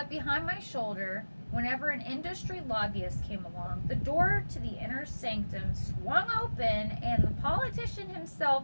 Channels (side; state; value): both; inverted; correlation -1.00